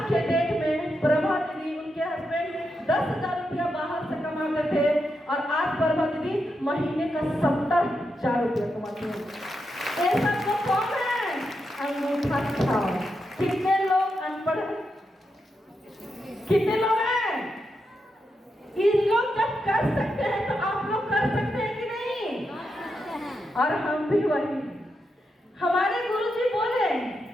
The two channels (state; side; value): normal; both; correlation 0.85